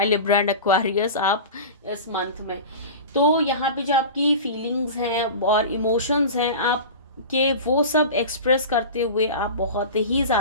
लिब्रा एंड एक्वेरियस आप इस मंथ में। तो यहाँ पे जो आपकी फीलिंग्स हैं और इमोशंस हैं आपके, वो सब एक्सप्रेस करते हुए आप बहुत ही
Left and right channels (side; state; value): both; inverted; correlation -0.31